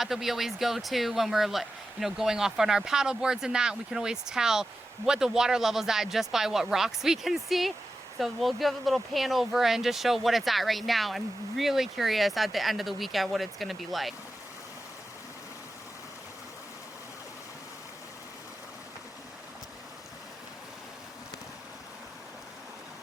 that we always go to when we're, you know, going off on our paddle boards and that. We can always tell what the water level's at just by what rocks we can see. So we'll give a little pan over and just show what it's at right now. I'm really curious at the end of the weekend what it's gonna be like.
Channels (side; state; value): both; normal; correlation 0.92